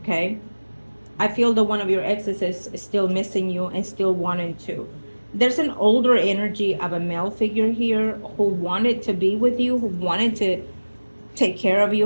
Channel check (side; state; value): both; inverted; correlation -1.00